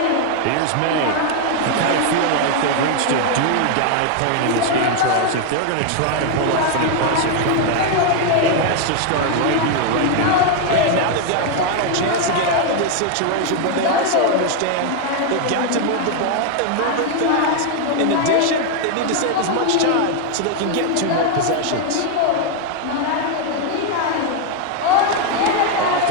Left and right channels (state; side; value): different; both; correlation 0.00